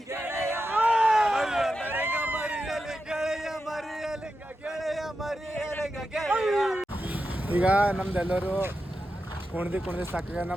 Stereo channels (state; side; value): normal; both; correlation 0.89